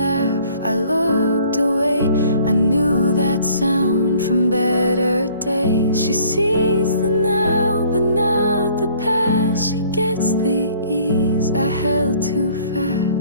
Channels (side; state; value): both; inverted; correlation -0.57